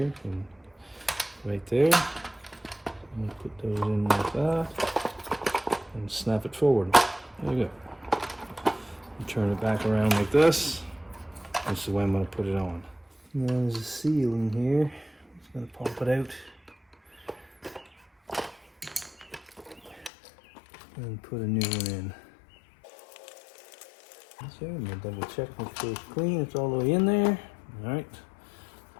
and right there. I'm going to put those in like that and snap it forward. There you go. And turn it back around like this. This is the way I'm going to put it on. Now there's a seal in here. I'm just going to pop it out. And put a new one in. So I'm going to double check, make sure it's clean. It's all the way in there. Alright.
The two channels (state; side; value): drops out; right; at 20.1 s